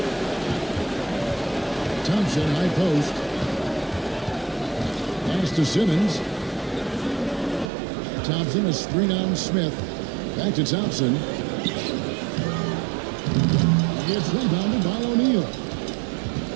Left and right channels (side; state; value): left; drops out; at 7.7 s